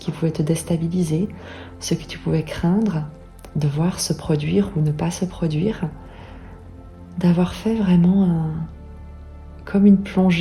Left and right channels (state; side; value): identical; both; correlation 1.00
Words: pouvait te déstabiliser, ce que tu pouvais craindre de voir se produire ou ne pas se produire, d'avoir fait vraiment comme une